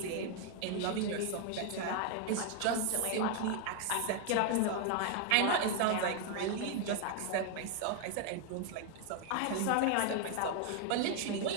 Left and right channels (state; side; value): different; both; correlation 0.00